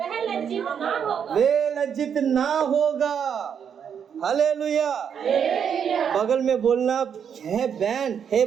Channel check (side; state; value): left; quieter; 7.7 dB